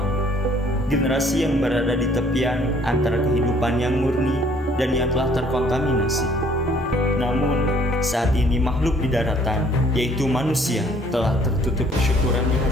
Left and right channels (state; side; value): normal; both; correlation 0.60